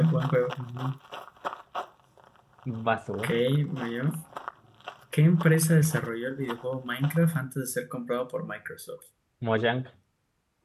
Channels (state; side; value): identical; both; correlation 1.00